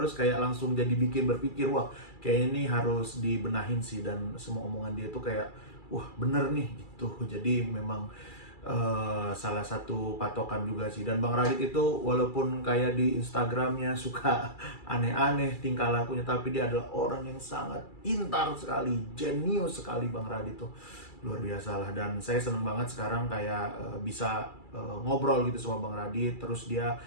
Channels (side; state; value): right; late; 2.3 ms